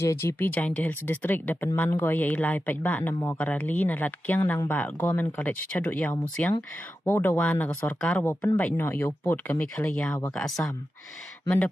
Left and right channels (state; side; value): normal; both; correlation 0.91